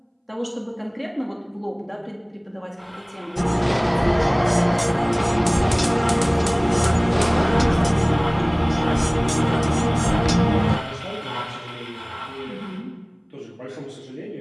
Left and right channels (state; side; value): identical; both; correlation 1.00